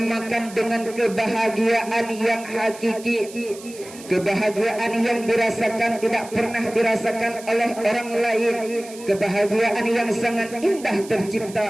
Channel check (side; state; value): right; noise; hiss, 18 dB below the sound